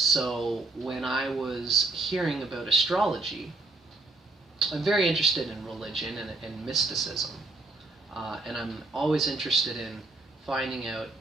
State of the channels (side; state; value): left; quieter; 3.2 dB